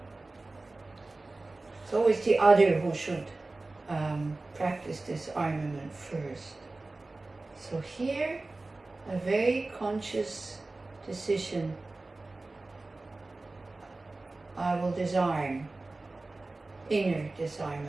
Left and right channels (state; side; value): quieter; left; 3.2 dB